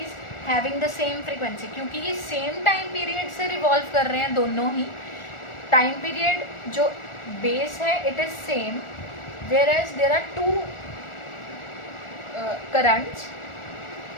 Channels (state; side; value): late; right; 1.4 ms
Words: having the same frequency. क्योंकि ये सेम टाइम पीरियड से रिवॉल्व कर रहे हैं दोनों ही, टाइम पीरियड जो base है it is same, whereas there are two currents,